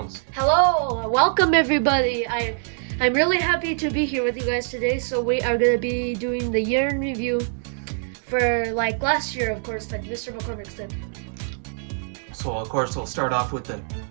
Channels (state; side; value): silent; left; 58 dB below the other